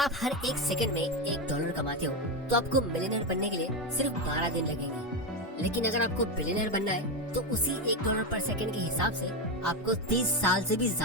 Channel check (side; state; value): both; normal; correlation 0.11